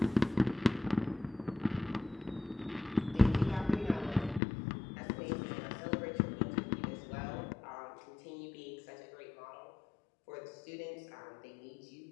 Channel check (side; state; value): right; drops out; at 4.4 s